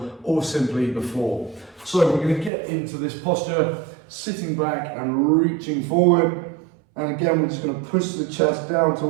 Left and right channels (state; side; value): drops out; left; at 2.5 s